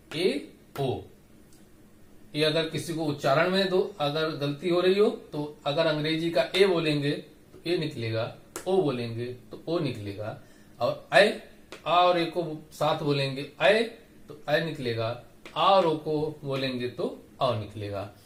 ए ओ। ये अगर किसी को उच्चारण में दो अगर गलती हो रही हो तो अगर अंग्रेजी का ए बोलेंगे तो ए निकलेगा, ओ बोलेंगे तो ओ निकलेगा, और ए आ और ए को साथ बोलेंगे ए तो ए निकलेगा, आ और ओ को बोलेंगे तो अ निकलेगा।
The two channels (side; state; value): both; identical; correlation 1.00